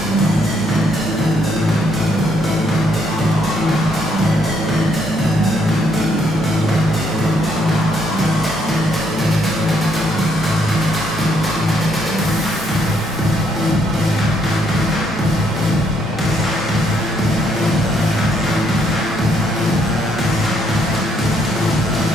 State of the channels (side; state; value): both; normal; correlation 0.71